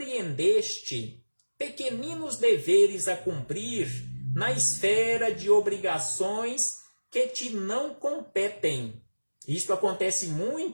pequeninos deveres a cumprir na esfera de obrigações que te não competem. Isto acontece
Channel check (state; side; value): inverted; both; correlation -1.00